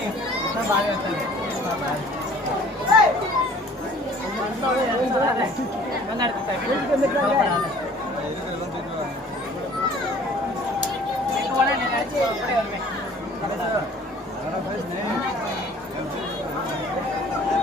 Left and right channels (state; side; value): normal; both; correlation 0.52